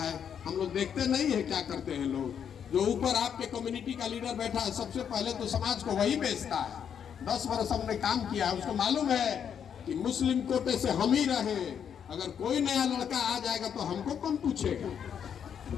हम लोग देखते नहीं है क्या करते हैं लोग। जो ऊपर आपके कम्युनिटी का लीडर बैठा है, सबसे पहले तो समाज को वही बेचता है। 10 वर्ष हमने काम किया है, उसको मालूम है कि मुस्लिम कोटे से हम ही रहे, अगर कोई नया लड़का आ जाएगा तो हमको कौन पूछेगा?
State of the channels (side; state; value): right; quieter; 8.1 dB